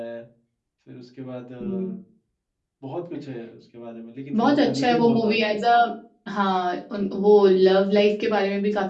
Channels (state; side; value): identical; both; correlation 1.00